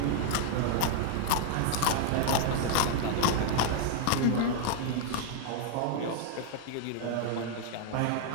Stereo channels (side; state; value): both; different; correlation 0.00